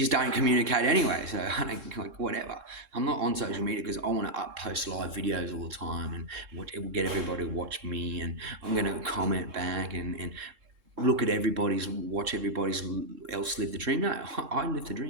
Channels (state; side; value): late; left; 3.7 ms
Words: don't communicate anyway. So I don't, like, whatever. I'm not on social media because I want to post live videos all the time, and it will get everybody to watch me, and I'm going to comment back and look at watch everybody's else live the dream. No, I live the